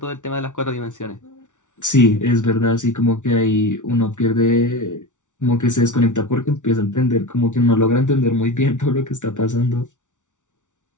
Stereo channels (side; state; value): right; late; 0.86 ms